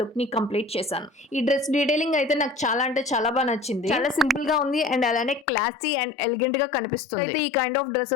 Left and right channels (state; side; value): drops out; right; at 5.5 s